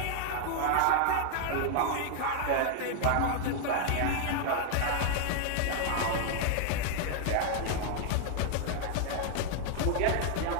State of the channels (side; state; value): both; different; correlation 0.00